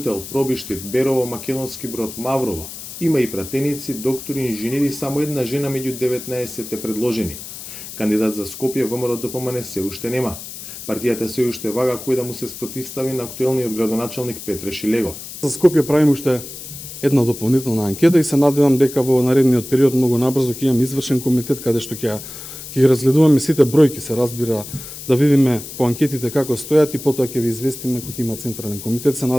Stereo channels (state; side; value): noise; left; hiss, 12 dB below the sound